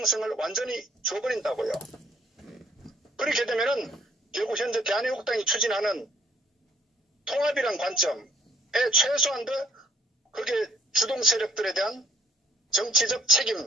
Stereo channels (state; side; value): normal; both; correlation 0.61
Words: 완전히 줘버린다고요. 그렇게 되면은 결국 현재 대한애국당이 추진하는 통합이란 관점에 최소한도 그게 주동 세력들에 대한 정치적